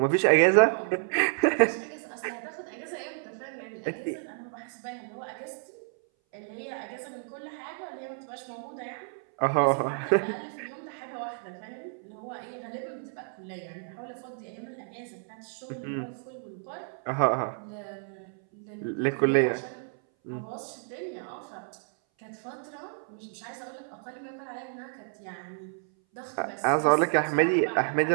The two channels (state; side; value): silent; left; 58 dB below the other